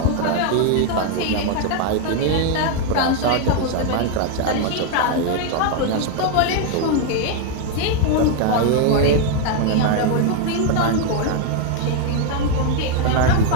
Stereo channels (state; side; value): different; both; correlation 0.00